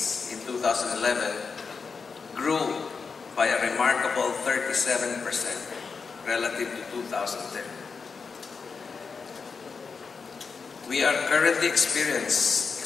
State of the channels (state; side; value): quieter; right; 5.2 dB